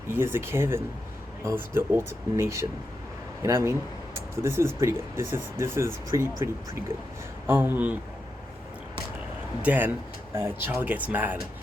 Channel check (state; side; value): normal; both; correlation 0.87